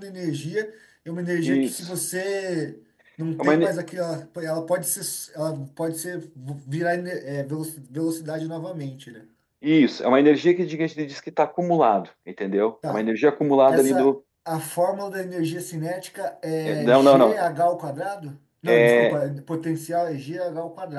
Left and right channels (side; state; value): both; identical; correlation 1.00